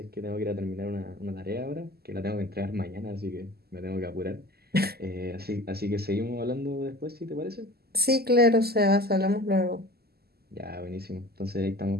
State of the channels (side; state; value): left; late; 0.46 ms